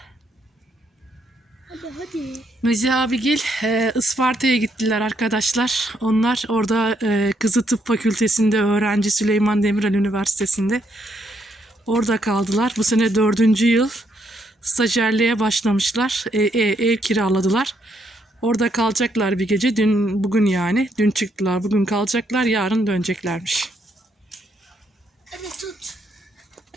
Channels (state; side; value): normal; both; correlation 0.74